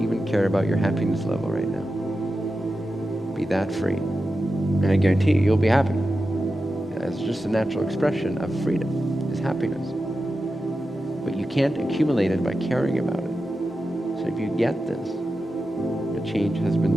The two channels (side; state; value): both; normal; correlation 0.91